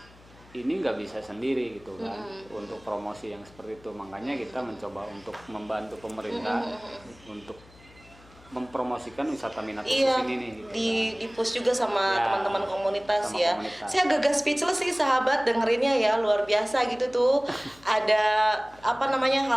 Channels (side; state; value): left; noise; hum, 25 dB below the sound